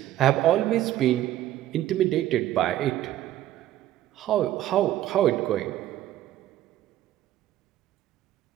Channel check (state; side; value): quieter; left; 13.4 dB